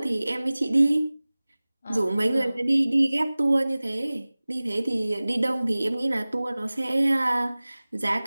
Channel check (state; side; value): inverted; both; correlation -0.99